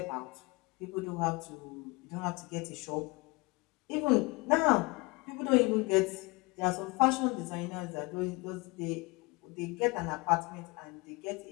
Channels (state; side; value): quieter; right; 25.9 dB